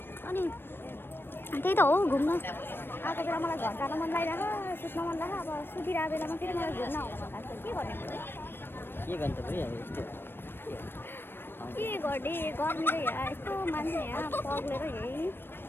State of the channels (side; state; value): right; late; 0.10 ms